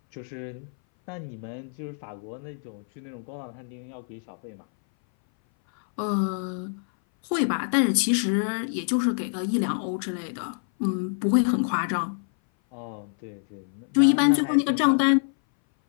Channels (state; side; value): silent; right; 59 dB below the other